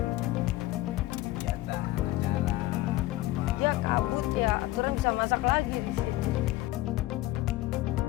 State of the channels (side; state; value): right; quieter; 17.1 dB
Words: Ya kabut ya, aturan bisa masak lagi di sini.